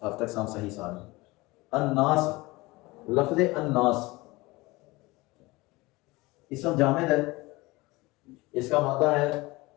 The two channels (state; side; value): quieter; right; 22.1 dB